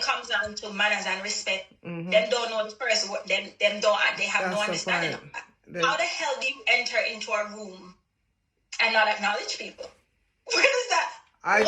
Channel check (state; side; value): identical; both; correlation 1.00